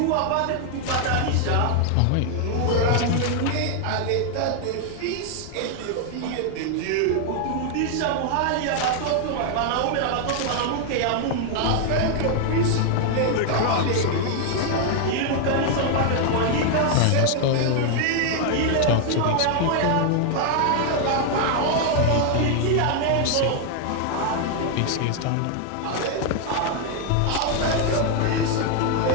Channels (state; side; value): different; both; correlation 0.00